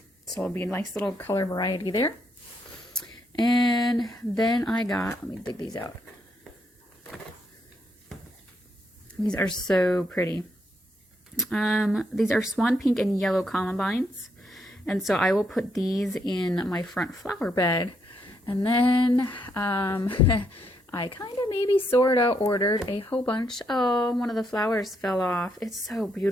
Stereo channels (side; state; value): both; normal; correlation 0.76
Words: So it'll be a nice little color variety there. And then let me dig these out. These are so pretty. These are swan pink and yellow columbines. And so I will put these in my front flower bed. And then I kind of maybe sort of ordered a whole bunch. Oh, one of the flowers fell off. It's so